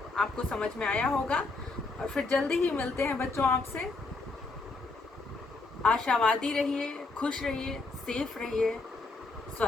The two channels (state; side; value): quieter; right; 3.6 dB